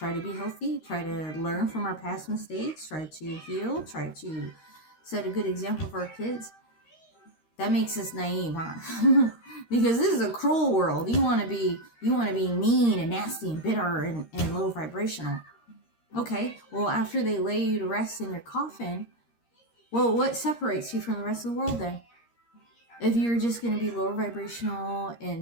to be healthy, try to learn from our past mistakes, try to heal, try to set a good example for our kids. That makes us naive, huh? Because this is a cruel world. You want to be mean and nasty and bitter and low vibrational. Okay, well, after they lay you to rest in your coffin, well, what separates you from the rest of the world then? If you're just going to be lower vibrational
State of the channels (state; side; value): late; right; 13 ms